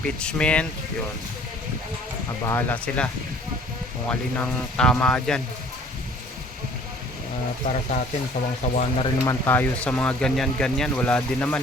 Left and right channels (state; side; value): normal; both; correlation 0.53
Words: yun. Bahala sila kung alin ang tama dyan. Para sa atin, sawang-sawa na rin naman tayo sa mga ganyan-ganyan. Wala din